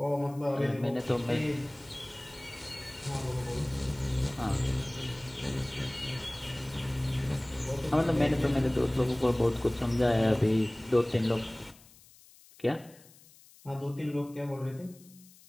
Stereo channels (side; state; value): left; noise; hiss, 25 dB below the sound